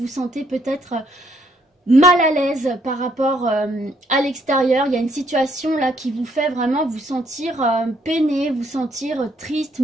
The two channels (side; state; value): both; normal; correlation 0.70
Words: sentez peut-être mal à l'aise par rapport à l'extérieur. Il y a une situation là qui vous fait vraiment vous sentir peiné, vous sentir triste,